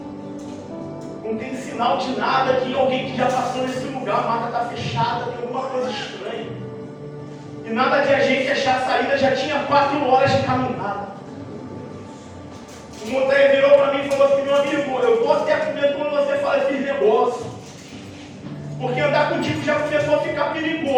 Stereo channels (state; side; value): identical; both; correlation 1.00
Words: Não tem sinal de nada aqui, alguém que já passou nesse lugar, a mata está fechada, tem alguma coisa estranha. E nada de a gente achar a saída, já tinha 4 horas de caminhada. O montanha virou para mim e falou assim, meu amigo, eu estou até com medo quando você fala esses negócios. Porque andar contigo já começou a ficar